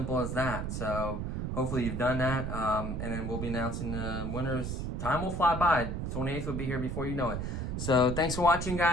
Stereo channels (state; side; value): noise; right; rumble, 3 dB below the sound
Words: as that. So hopefully you've done that. And then we'll be announcing the winners. Time will fly by. 28th will be here before you know it. So thanks for watching,